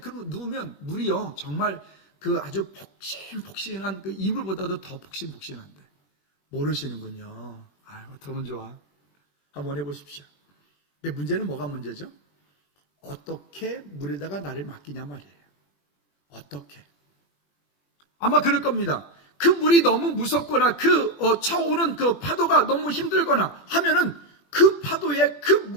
누우면 물이요 정말 그 아주 폭신폭신한 그 이불보다도 더 폭신폭신한데 모르시는군요. 어떡하면 좋아. 한번 해보십시오. 근데 문제는 뭐가 문제죠? 어떻게 물에다가 나를 맡기냐 말이에요. 어떻게? 아마 그럴 겁니다. 그 물이 너무 무섭거나 쳐오는 그 파도가 너무 힘들거나 하면은 그 파도에 그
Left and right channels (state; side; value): late; right; 21 ms